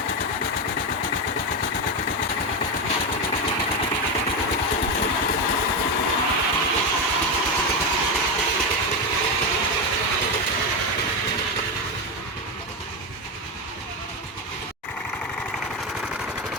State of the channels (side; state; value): both; normal; correlation 0.11